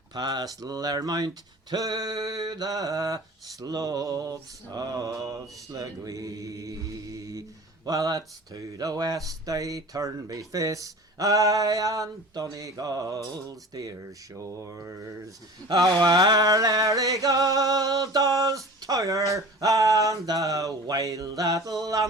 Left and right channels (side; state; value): both; normal; correlation 0.39